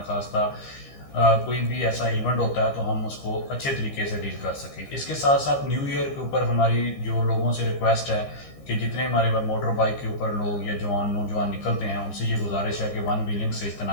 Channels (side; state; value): right; late; 15 ms